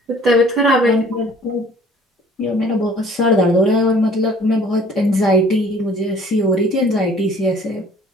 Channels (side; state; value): both; normal; correlation 0.53